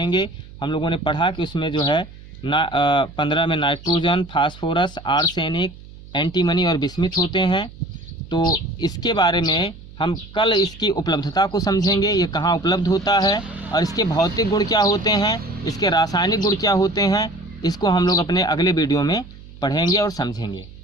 हम लोगों ने पढ़ा कि उसमें जो है 15 में नाइट्रोजन, फास्फोरस, आर्सेनिक, एंटीमनी और बिस्मिथ होते हैं। तो इसके बारे में हम कल इसकी उपलब्धता को समझेंगे, ये कहाँ उपलब्ध होता है और इसके भौतिक गुण क्या होते हैं, इसके रासायनिक गुण क्या होते हैं, इसको हम लोग अपने अगले वीडियो में पढ़ेंगे और समझेंगे।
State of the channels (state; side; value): noise; right; hum, 18 dB below the sound